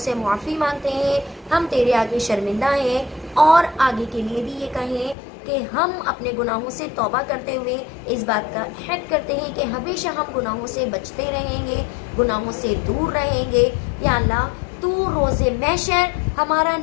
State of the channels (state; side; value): drops out; right; at 5.2 s